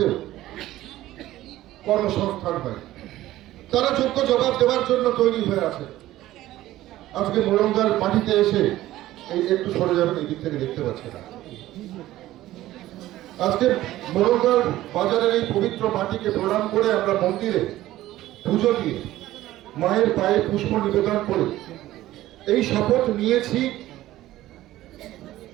কর্মসংস্থান হয়, তারা যোগ্য জবাব দেওয়ার জন্য তৈরি হয়ে আছে। আজকে মোরাঙ্গার মাটিতে এসে এই একটু সরে যাবেন, এই দিক থেকে দেখতে পাচ্ছে না। আজকে মোরাঙ্গার বাজারের এই পবিত্র মাটিকে প্রণাম করে আমরা মন্দিরে পুজো দিয়ে মায়ের পায়ে পুষ্প নিবেদন করে এই শপথ নিয়েছি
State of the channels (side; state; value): left; quieter; 15.2 dB